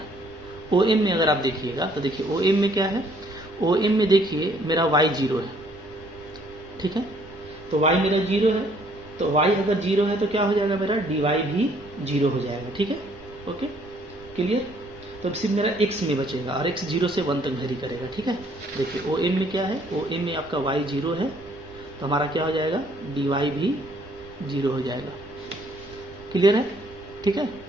OM में अगर आप देखिएगा तो देखिए OM में क्या है, OM में देखिए मेरा y 0 है। ठीक है, तो y मेरा 0 है, तो y अगर 0 है तो क्या हो जाएगा, मेरा dy भी 0 हो जाएगा। ठीक है, ओके, क्लियर। तो सिर्फ मेरा x में बचेगा और x 0 से 1 तक वेरी करेगा। ठीक है, देखिए OM में क्या है, OM में आपका y 0 है तो हमारा क्या हो जाएगा, dy भी 0 हो जाएगा। क्लियर है? ठीक है,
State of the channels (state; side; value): normal; both; correlation 0.63